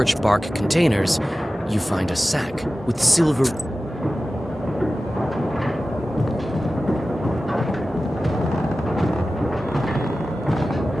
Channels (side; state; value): both; normal; correlation 0.95